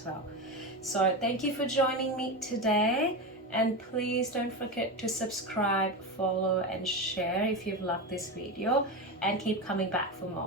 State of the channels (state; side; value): normal; both; correlation 0.19